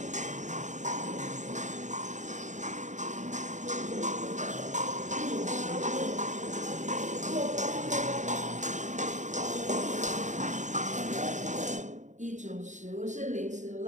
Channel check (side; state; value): left; late; 0.35 ms